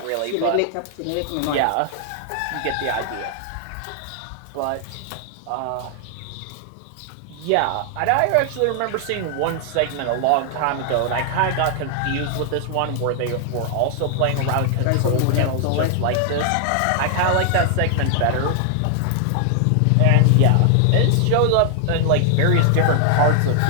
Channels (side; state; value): both; different; correlation 0.00